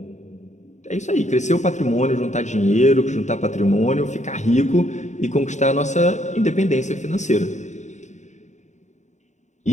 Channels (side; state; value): right; late; 0.34 ms